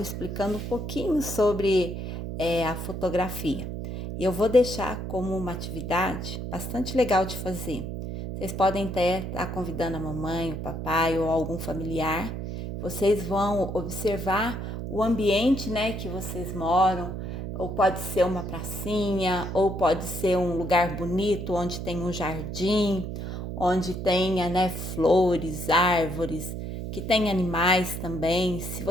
explicando um pouquinho sobre a fotografia. E eu vou deixar como uma atividade bastante legal de fazer. Vocês podem até estar convidando a mamãe, o papai ou algum familiar. Vocês vão observar o ambiente, né, que vocês moram, ou pode ser uma pracinha, ou pode ser um lugar bonito onde tem um jardim, onde tenha, né, flores, árvores, que tem animais também. Se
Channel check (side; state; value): right; noise; hum, 6 dB below the sound